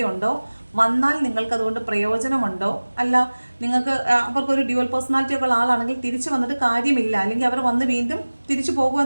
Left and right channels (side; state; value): both; inverted; correlation -1.00